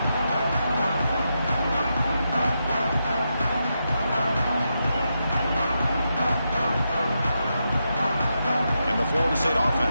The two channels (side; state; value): both; inverted; correlation -0.85